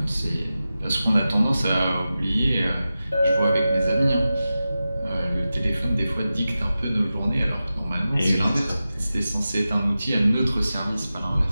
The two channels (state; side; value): inverted; both; correlation -0.93